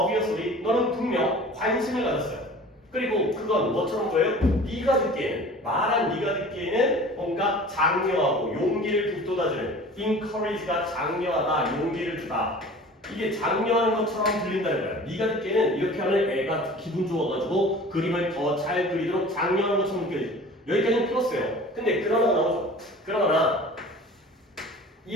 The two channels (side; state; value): both; normal; correlation 0.43